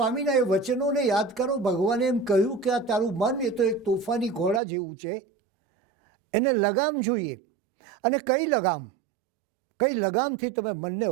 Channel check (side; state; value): left; drops out; at 4.6 s